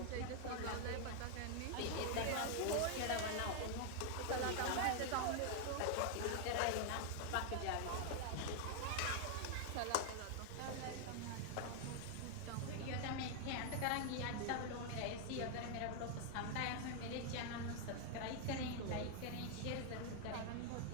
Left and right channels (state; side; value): different; both; correlation 0.00